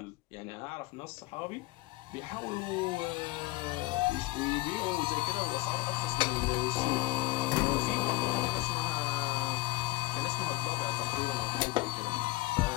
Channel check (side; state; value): right; quieter; 19.5 dB